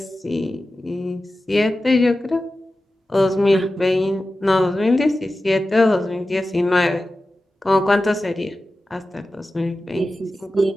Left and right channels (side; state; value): both; normal; correlation 0.94